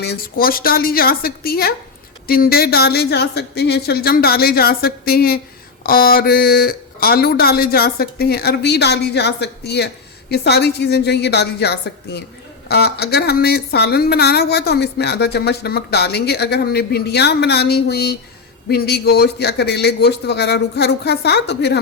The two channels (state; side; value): quieter; right; 4.6 dB